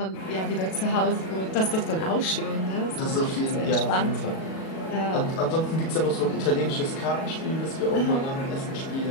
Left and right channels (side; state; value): right; late; 37 ms